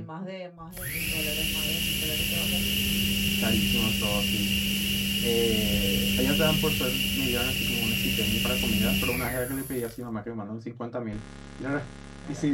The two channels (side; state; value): both; identical; correlation 1.00